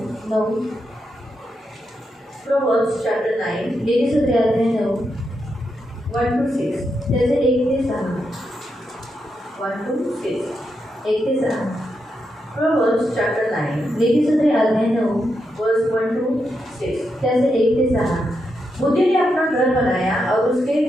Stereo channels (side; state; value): both; normal; correlation 0.84